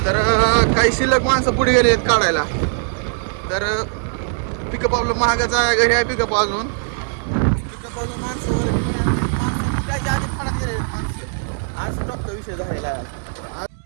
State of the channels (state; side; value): silent; left; digital silence